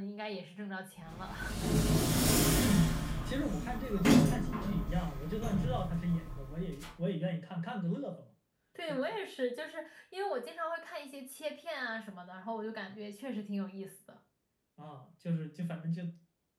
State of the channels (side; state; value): both; identical; correlation 1.00